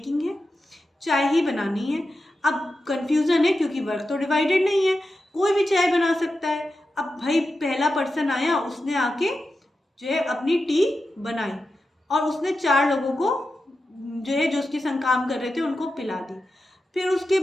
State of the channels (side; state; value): both; normal; correlation 0.91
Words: है, चाय ही बनानी है, अब कन्फ्यूज़न है क्योंकि वर्क तो डिवाइडेड नहीं है, कोई भी चाय बना सकता है। अब भाई पहला पर्सन आया, उसने आके जो है अपनी टी बनाई और उसने 4 लोगों को जो है जो उसके संग काम कर रहे थे उनको पिला दी। फिर उसके